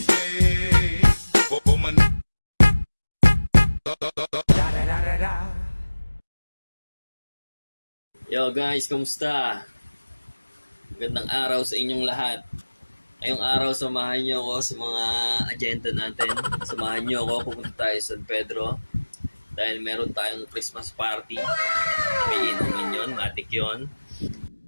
Yo guys, kumusta? Magandang araw sa inyong lahat. Ngayong araw, samahan niyo ako sa mga agenda natin. Samahan niyo ako, pupunta tayo sa San Pedro. Dahil meron tayong Christmas party. May inumin yun, matik yun.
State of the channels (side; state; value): both; inverted; correlation -1.00